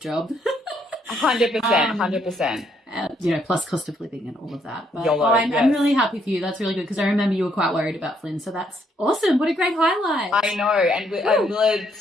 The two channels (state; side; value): normal; both; correlation 0.72